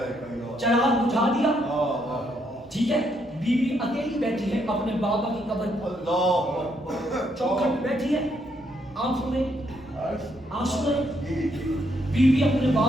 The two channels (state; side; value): normal; both; correlation 0.74